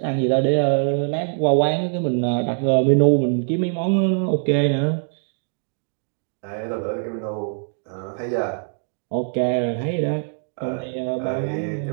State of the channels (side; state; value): left; silent; digital silence